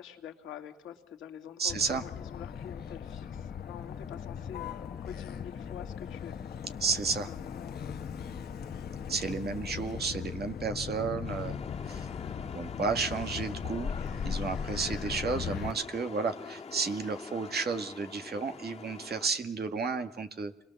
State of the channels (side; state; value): both; normal; correlation 0.45